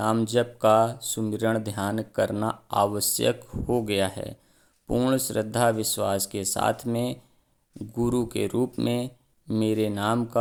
जप का सुमिरन ध्यान करना आवश्यक हो गया है। पूर्ण श्रद्धा विश्वास के साथ में गुरु के रूप में मेरे नाम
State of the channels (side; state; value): both; identical; correlation 1.00